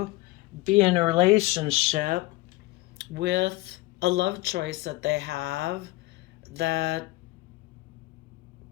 be in a relationship with a love choice that they have that,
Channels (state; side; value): quieter; right; 20.1 dB